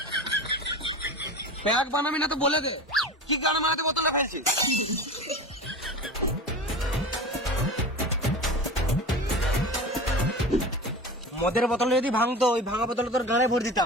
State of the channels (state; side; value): normal; both; correlation 0.31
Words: প্যাক বানাবি না তো বলে দে, কি গান মারাতে বোতলে ফেলছিস? মদের বোতলে যদি ভাঙতো, ওই ভাঙা বোতলে তোর গানে ভরে